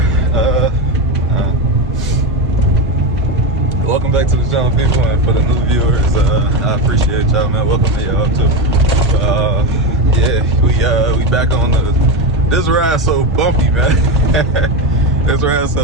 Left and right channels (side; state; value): both; normal; correlation 0.15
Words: welcome back to the channel, people, and for the new viewers, I appreciate y'all, man. Welcome to y'all too. Yeah, we back on this ride so bumpy, man. This ride